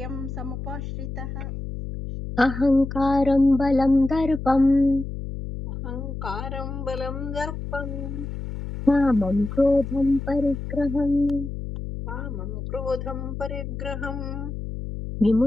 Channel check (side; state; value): left; noise; hum, 7 dB below the sound